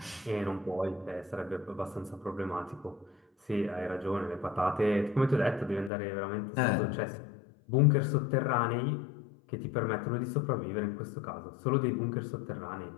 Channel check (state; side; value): drops out; right; at 5.9 s